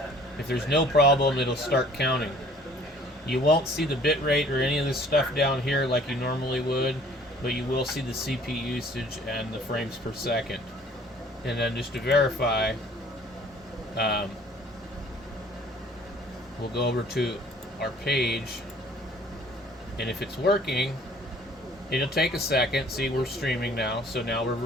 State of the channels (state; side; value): normal; both; correlation 0.54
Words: If there's no problem, it'll start counting. You won't see the bit rate or any of this stuff down here like you normally would, but you will see the CPU usage and the frames per second. And then just to verify, we'll go over to our page, and if it's working, it'll take a second. See, we're streaming now, so now we're